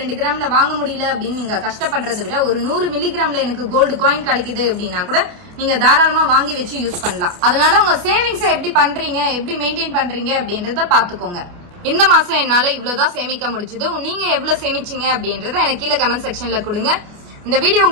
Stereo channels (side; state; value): left; late; 28 ms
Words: கிராம்ல வாங்க முடியல அப்படின்னு நீங்க கஷ்டப்படுறதை விட ஒரு 100 மில்லிகிராம்ல எனக்கு கோல்டு காயின் கிடைக்குது அப்படின்னா கூட நீங்க தாராளமா வாங்கி வச்சு யூஸ் பண்ணலாம். அதனால உங்க சேவிங்ஸ எப்படி பண்றீங்க, எப்படி மெயின்டைன் பண்றீங்க அப்படின்றத பாத்துக்கோங்க. இந்த மாசம் என்னால இவ்வளவுதான் சேமிக்க முடிச்சது, நீங்க எவ்வளவு சேமிச்சீங்க அப்படின்றத எனக்கு கீழே கமெண்ட் செக்ஷன்ல கொடுங்க. இந்த வீடியோ